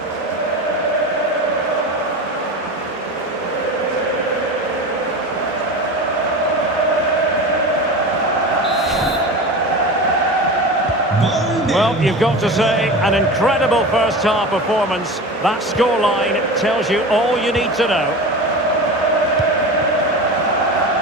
Well, you've got to say, an incredible first-half performance. That scoreline tells you all you need to know.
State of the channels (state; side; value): normal; both; correlation 0.29